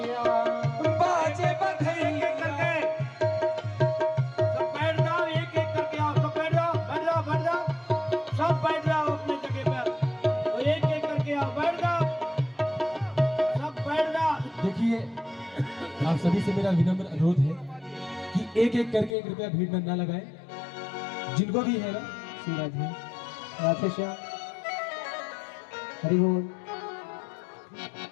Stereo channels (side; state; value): right; drops out; at 19.2 s